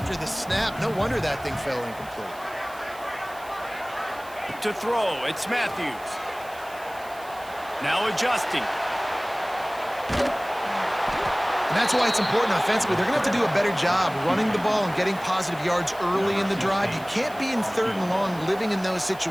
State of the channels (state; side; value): noise; right; hiss, 21 dB below the sound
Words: the snap. No wonder that thing fell incomplete. To throw, it's Matthews. Now adjusting. And that's why it's important offensively. They're going to have to do a better job running the ball and getting positive yards early in the drive. You can't be in third and long living in those